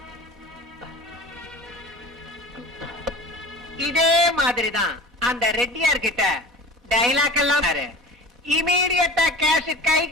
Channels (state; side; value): normal; both; correlation 0.38